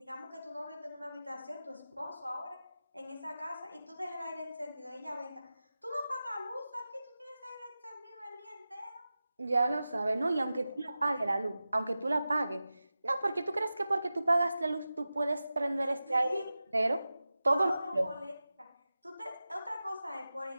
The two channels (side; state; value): both; inverted; correlation -0.94